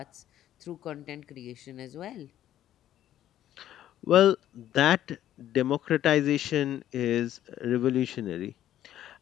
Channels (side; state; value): right; quieter; 12.1 dB